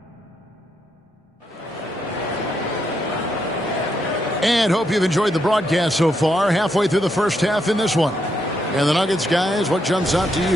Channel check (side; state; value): both; normal; correlation 0.79